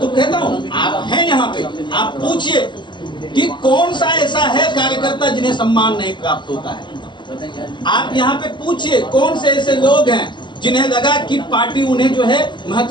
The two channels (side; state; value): right; late; 0.22 ms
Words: कहता हूँ, आप हैं यहाँ पे, आप पूछिए कि कौन सा ऐसा है कार्यकर्ता जिन्हें सम्मान नहीं प्राप्त होता है। आप यहाँ पे पूछिए कौन से ऐसे लोग हैं जिन्हें लगा कि पार्टी उन्हें जो है